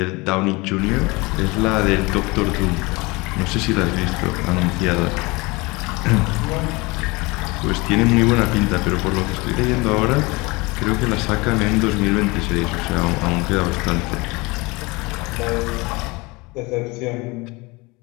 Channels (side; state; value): right; quieter; 24.8 dB